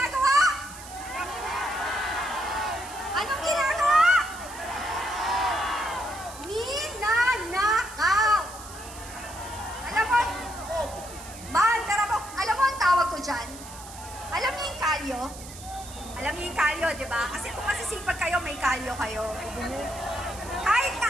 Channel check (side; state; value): right; noise; hiss, 15 dB below the sound